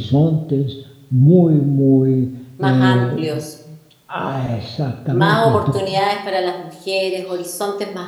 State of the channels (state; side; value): identical; both; correlation 1.00